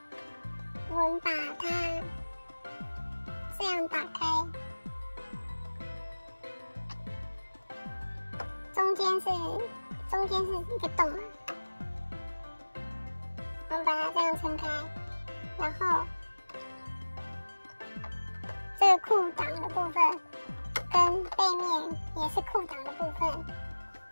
我们把它这样打开，中间是一个洞嘛，我们把它这样撑开，然后这个裤裆的部分跟背面也是裤裆的部分，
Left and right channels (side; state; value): both; inverted; correlation -1.00